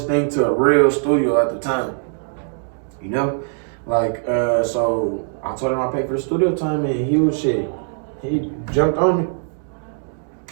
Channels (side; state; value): left; silent; 65 dB below the other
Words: thing to a real studio at the time. You know? Like, so I told him I paid for the studio time and he was shit. He jumped on me.